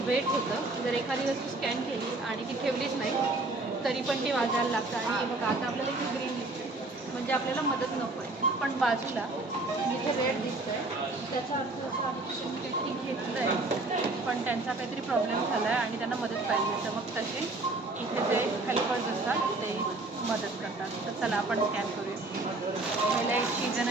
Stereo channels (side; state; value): left; quieter; 3.0 dB